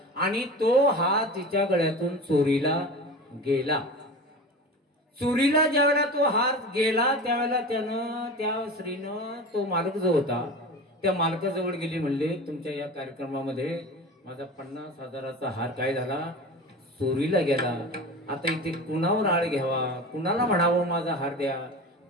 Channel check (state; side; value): normal; both; correlation 0.32